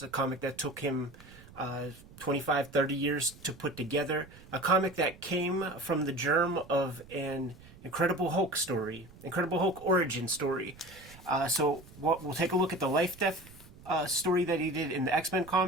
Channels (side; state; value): right; noise; rumble, 21 dB below the sound